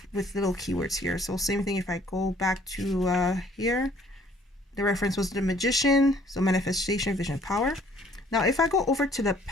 with little keywords here. So same thing. If I go back to here, the reference was the Magician, so manifestation, vision, power. Now, if I go over to the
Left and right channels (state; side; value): normal; both; correlation 0.59